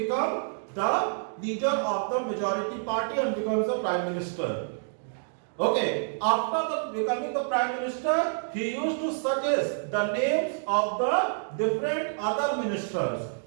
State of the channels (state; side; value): silent; left; digital silence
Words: the leader of the majority party and becomes the prime minister. Okay, after becoming the prime minister, he used to suggest the names of the different other ministers.